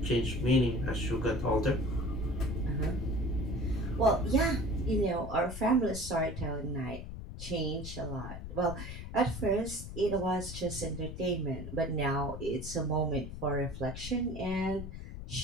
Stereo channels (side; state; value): left; noise; rumble, 9 dB below the sound